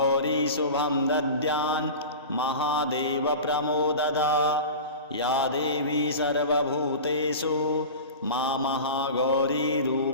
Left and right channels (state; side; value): inverted; both; correlation -0.32